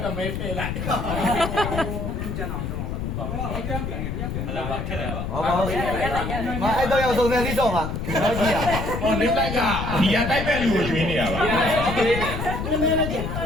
တမဲဖဲလိုက်ဘူးကျန်အောင်တော့ဘူးပေါ့ဟုတ်ကဲ့ပြန်လာပါခက်တယ်ပါဟောပါမအဲ့တော့ရောက်စုံစမ်းစီးတော့မှာတော့ကြည့်ရဟောနေလိုက်ကဘီယာတိုက်မဲ့လူကိုကျွေးနေတာပါနမလေးကျန်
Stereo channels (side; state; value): left; noise; rumble, 4 dB below the sound